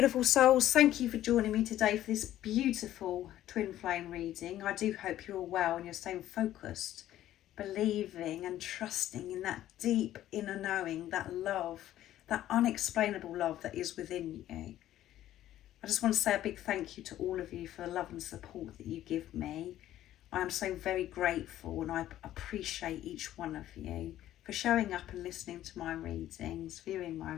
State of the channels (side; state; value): right; quieter; 13.1 dB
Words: souls, thank you for joining me today for this beautiful twin flame reading. I do hope you're all well and you're staying focused, believing and trusting in that deep inner knowing, that love, that unexplainable love that is within you. I just want to say a big thank you to all of you for the love and support that you give me. I am so very grateful and I appreciate each one of you for showing up and listening to my readings, viewing my